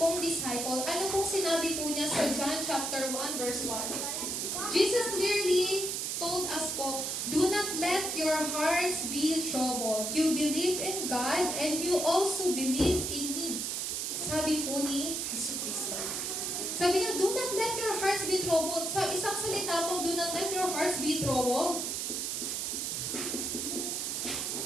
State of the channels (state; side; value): noise; right; hiss, 1 dB below the sound